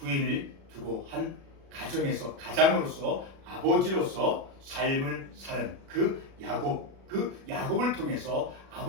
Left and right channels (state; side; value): late; left; 36 ms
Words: 두고 한 가장으로서 아버지로서 삶을 사는 그 야곱을 통해서